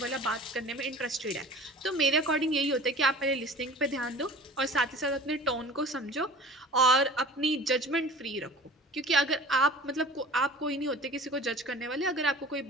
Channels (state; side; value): normal; both; correlation 0.42